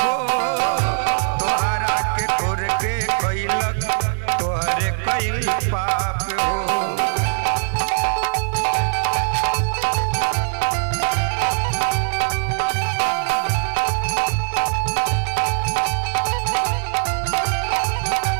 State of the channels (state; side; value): silent; left; 62 dB below the other